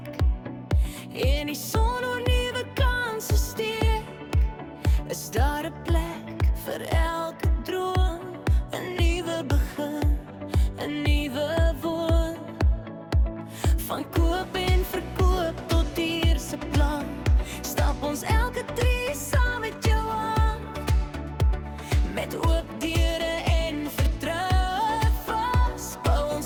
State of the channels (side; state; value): both; identical; correlation 1.00